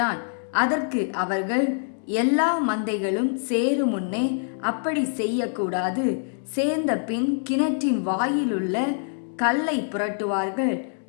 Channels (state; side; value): silent; right; digital silence